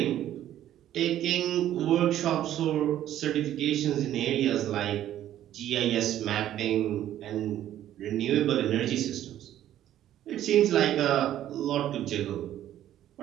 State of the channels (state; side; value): quieter; left; 12.1 dB